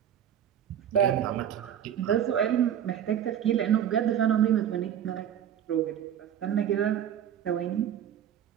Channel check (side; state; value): left; quieter; 9.6 dB